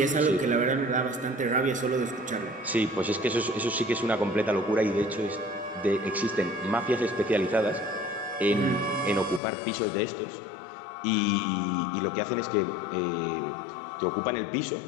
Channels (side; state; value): right; drops out; at 9.4 s